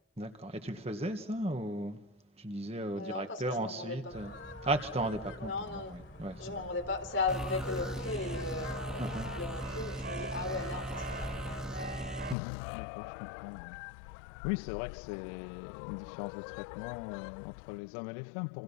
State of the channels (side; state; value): right; drops out; at 12.4 s